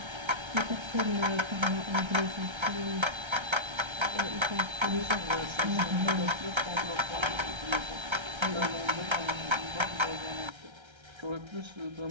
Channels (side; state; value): left; late; 1.3 ms